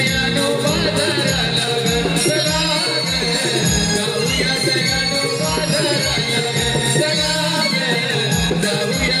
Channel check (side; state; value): both; identical; correlation 1.00